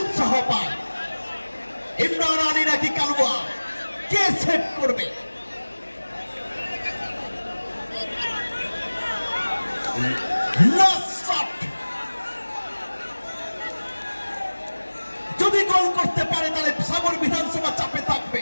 পায়। ইমরান আলী নাকি কালুয়া, কে সেট করবে? যদি গোল করতে পারে তাহলে সাগর বিধানসভা চাপে থাকবে।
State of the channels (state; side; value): inverted; both; correlation -1.00